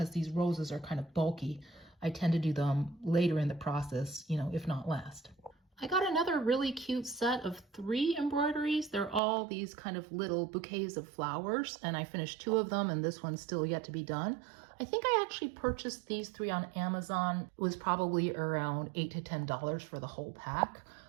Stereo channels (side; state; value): left; drops out; at 9.2 s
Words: these roses are kind of bulky, I tend to do them later in the process, you know, if not last. I got another really cute set of 3 embroideries. They're all these kind of little bouquets of flowers, and I finished 2 of them, and this one's still yet to be done. I think I actually purchased these 3 on Amazon. It was probably around $8 to $10 for the whole pack.